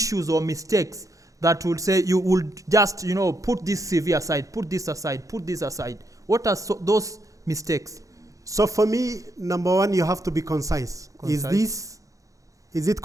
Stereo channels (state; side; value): late; left; 0.16 ms